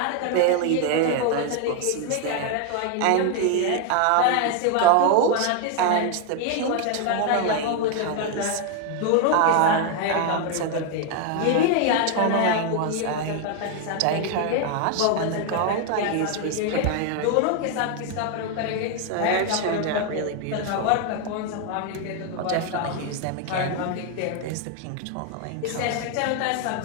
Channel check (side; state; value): both; different; correlation 0.01